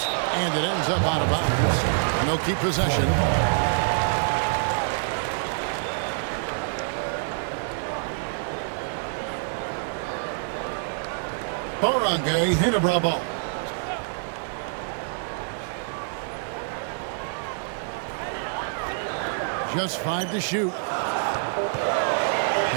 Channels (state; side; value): silent; left; digital silence